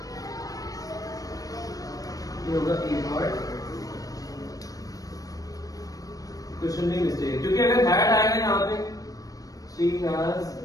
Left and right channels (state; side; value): late; right; 0.17 ms